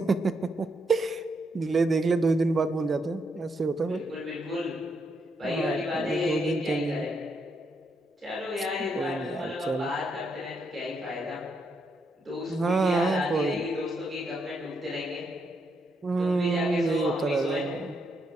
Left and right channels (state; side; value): normal; both; correlation 0.78